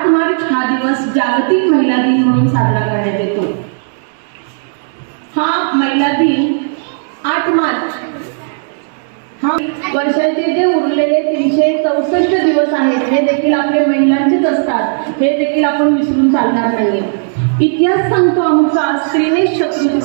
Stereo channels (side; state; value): left; silent; digital silence